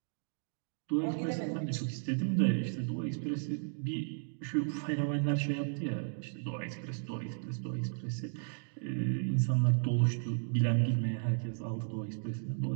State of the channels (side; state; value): left; silent; digital silence